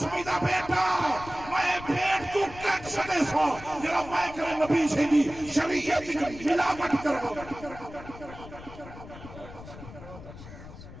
میدہ بیٹا میں پیٹ کو کٹ سڑے سا جرا میں کرے نبی سے دی شریعت کی ملاوٹ کرو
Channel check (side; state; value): left; noise; rumble, 15 dB below the sound